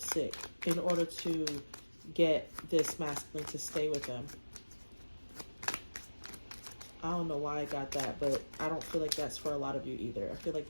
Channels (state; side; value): inverted; both; correlation -1.00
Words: in order to get this masculine to stay with them. I don't know why I got that, but I don't feel like that's for a lot of you either. I feel like